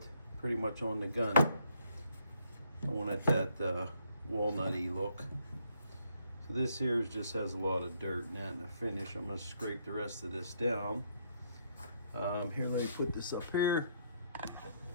pretty much on the gun. I want it that walnutty look. So this here just has a lot of dirt and that in the finish. I'm gonna scrape the rest of this down. Here, let me put this up here.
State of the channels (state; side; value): inverted; both; correlation -0.71